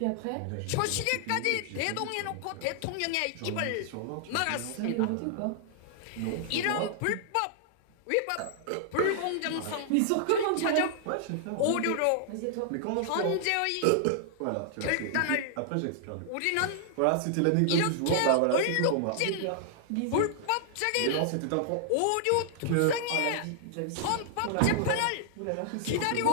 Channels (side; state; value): both; different; correlation -0.01